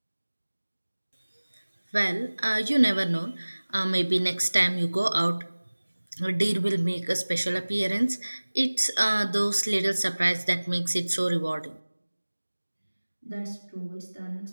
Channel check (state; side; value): inverted; both; correlation -1.00